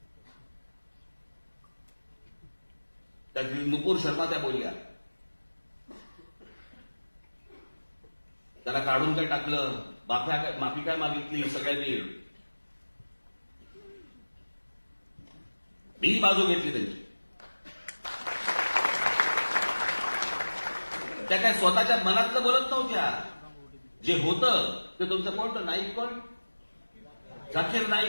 त्या नुपूर शर्मा त्या बोलल्या, त्याला काढून काय टाकलं, माफी काय मागितली सगळ्यांनी. मी बाजू घेतली त्यांची. त्या काय स्वतःच्या मनातलं बोलत नव्हत्या. जे होतं ते तुमचं कोण, नाईक कोण, झाकीर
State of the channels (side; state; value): both; inverted; correlation -1.00